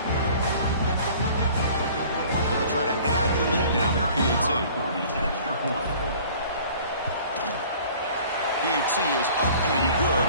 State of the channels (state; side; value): inverted; both; correlation -0.49